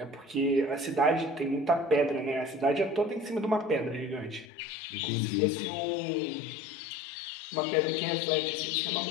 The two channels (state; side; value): drops out; right; at 4.5 s